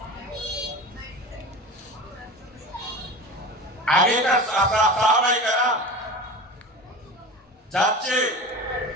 আগেকার সাহাবায়ে কেরাম যাচ্ছে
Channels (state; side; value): normal; both; correlation 0.32